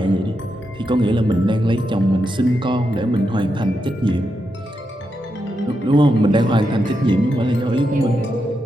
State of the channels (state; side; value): normal; both; correlation 0.85